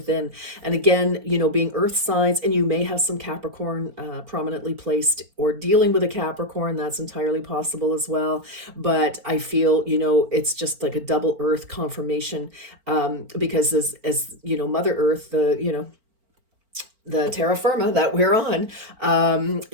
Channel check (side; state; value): left; late; 4.4 ms